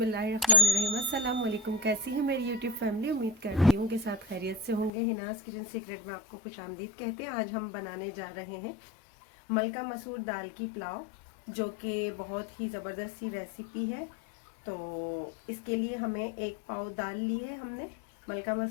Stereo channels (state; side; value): drops out; right; at 4.9 s